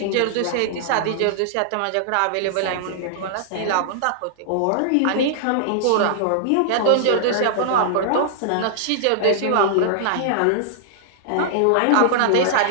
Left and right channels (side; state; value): both; different; correlation -0.01